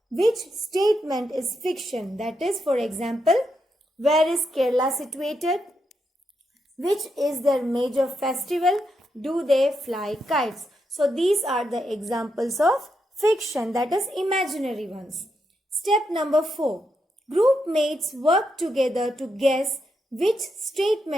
which statement is fiction. That is, for example, where is Kerala situated? Which is their major festival? Do they fly kites? So these are the examples of fiction, that is imaginary ones. Step number 4. Group mates work together to guess which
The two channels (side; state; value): both; normal; correlation 0.83